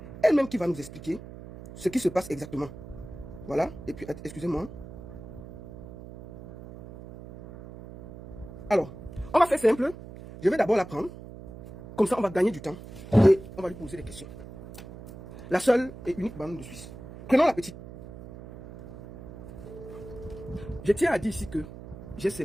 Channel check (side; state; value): right; noise; hum, 14 dB below the sound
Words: Elle-même qui va nous expliquer ce qui se passe exactement. Voilà. Et puis, excusez-moi. Alors, on va faire simple. Je vais d'abord la prendre. Comme ça, on va gagner du temps. Et on va lui poser des questions. La seule et unique bande de Suisse. Prenons la petite. Je tiens à dire ici que j'ai